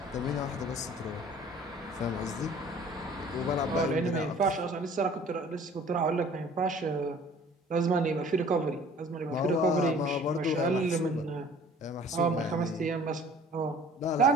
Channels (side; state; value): both; normal; correlation 0.50